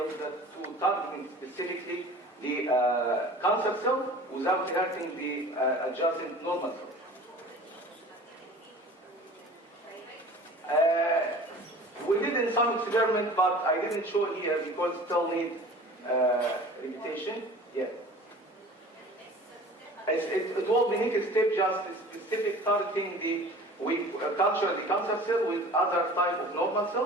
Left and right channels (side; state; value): both; normal; correlation 0.43